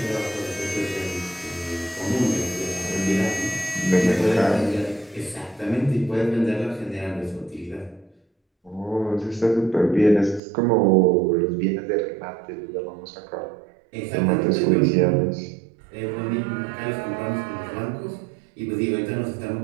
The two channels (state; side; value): drops out; left; at 10.4 s